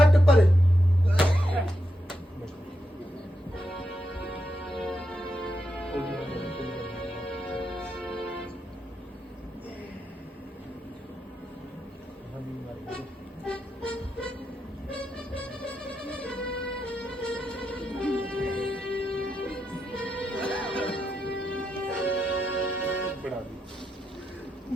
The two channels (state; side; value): normal; both; correlation 0.85